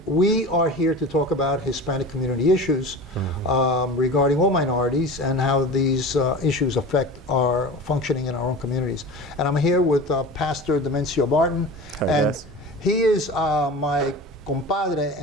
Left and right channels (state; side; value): normal; both; correlation 0.34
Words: we are here to talk about Hispanic community issues regarding all minorities and how these issues affect our functioning in our own communities. And I'm here with Pastor Demencio Barton. Hi, and guys. he is my compadre